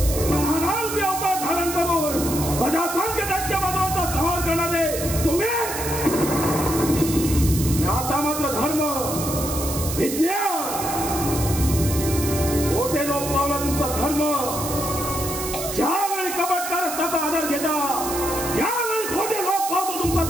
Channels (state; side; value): noise; right; hiss, 6 dB below the sound